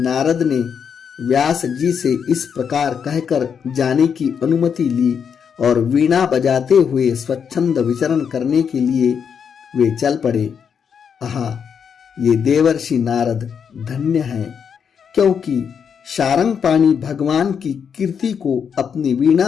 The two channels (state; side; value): quieter; right; 7.1 dB